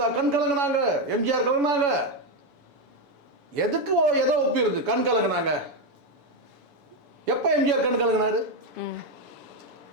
கண் கலங்கினாங்க, எம்ஜிஆர் கலங்கினாங்க. எதுக்கு எதோ ஒப்பிடுது கண் கலங்கினாங்க? எப்போ எம்ஜிஆர் கண் கலங்கினாரு?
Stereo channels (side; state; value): left; late; 7.0 ms